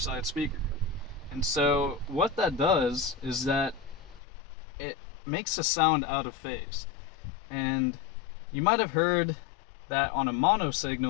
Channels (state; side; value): drops out; right; at 4.2 s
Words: speaker. And so what that does is that it makes a sound out of phase. And you might have heard that on a mono